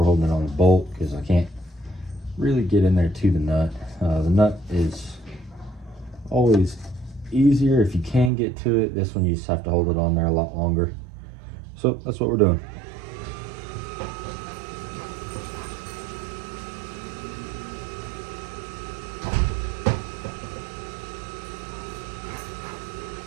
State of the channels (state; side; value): drops out; left; at 8.3 s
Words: holding it on a bolt because I can't really get in there to the nut. The nut is always easier if you can get to it. This one you just have to hold it on there a lot longer. So that's what we're doing.